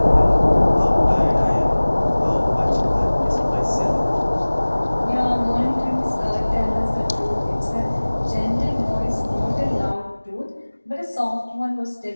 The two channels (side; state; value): both; inverted; correlation -1.00